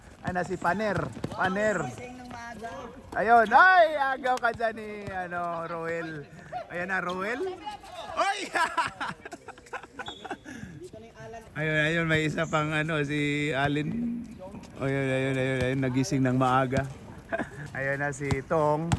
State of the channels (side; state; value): both; identical; correlation 1.00